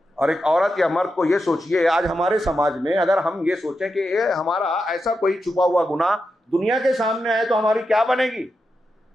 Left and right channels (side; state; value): both; normal; correlation 0.88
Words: اور ایک عورت یا مرد کو یہ سوچئے، آج ہمارے سماج میں اگر ہم یہ سوچیں کہ یہ ہمارا ایسا کوئی چھپا ہوا گناہ دنیا کے سامنے آئے تو ہماری کیا بنے گی؟